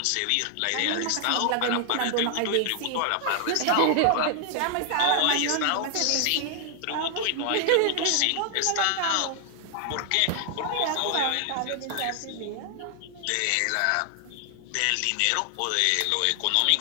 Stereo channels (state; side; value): different; both; correlation 0.00